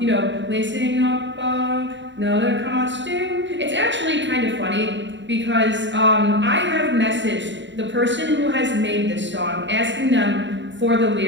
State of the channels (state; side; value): late; left; 0.53 ms